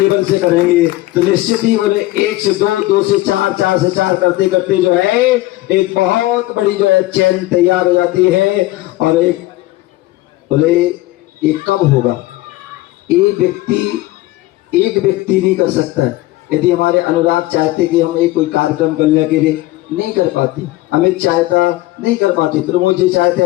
से करेंगे तो निश्चित ही बोले 1 से 2, 2 से 4, 4 से 4 करते करते जो है एक बहुत बड़ी जो है चैन तैयार हो जाती है। और एक बोले ये कब होगा, एक व्यक्ति नहीं कर सकता है। यदि हमारे अनुराग चाहते कि हम एक कोई कार्यक्रम करने के लिए, नहीं कर पाते। अमित चाहता, नहीं कर पाते। प्रमोद जी चाहते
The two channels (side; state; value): right; quieter; 17.7 dB